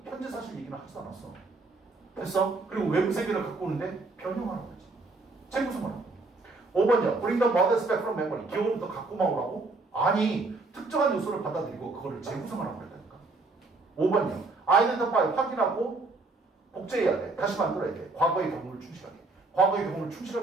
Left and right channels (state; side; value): quieter; left; 3.5 dB